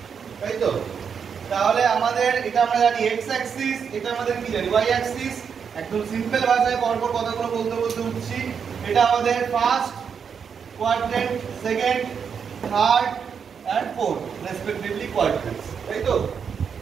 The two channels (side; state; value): left; quieter; 6.8 dB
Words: তাই তো? তাহলে আমাদের এটা আমরা জানি এক্স অ্যাক্সিস, এটা আমাদের কি জানি ওয়াই অ্যাক্সিস। একদম সিম্পল ভাষায় পরপর কথাগুলো বলতে বলতে উঠছি। এটা আমাদের first quadrant, second, third and fourth respectively quadrants, তাই তো?